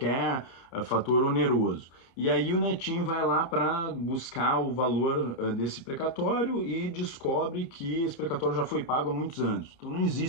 fator oneroso. E aí o netinho vai lá para buscar o valor desse precatório e descobre que esse precatório já foi pago há muitos anos. Então não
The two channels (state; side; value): late; right; 30 ms